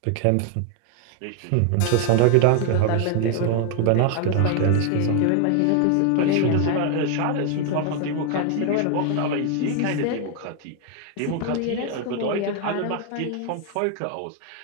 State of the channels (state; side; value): different; both; correlation 0.00